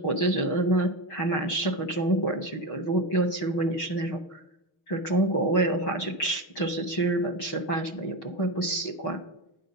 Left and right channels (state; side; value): late; right; 6.4 ms